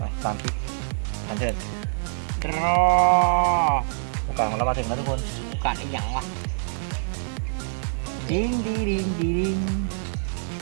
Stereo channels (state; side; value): silent; left; digital silence